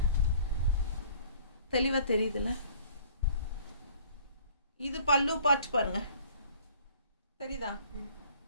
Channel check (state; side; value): inverted; both; correlation -0.53